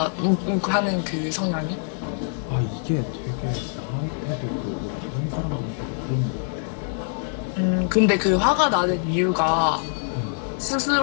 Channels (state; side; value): silent; right; 62 dB below the other